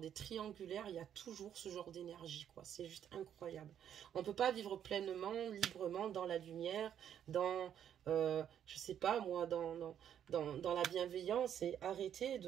triangulaires, il y a toujours ce genre d'énergie, quoi. C'est juste incroyable. On ne peut pas vivre pleinement, librement dans la lumière, dans, je sais pas moi, dans la bienveillance et arrêter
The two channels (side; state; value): left; quieter; 9.5 dB